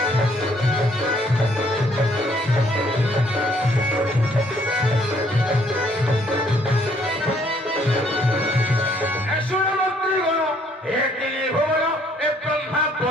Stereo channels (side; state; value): both; normal; correlation 0.65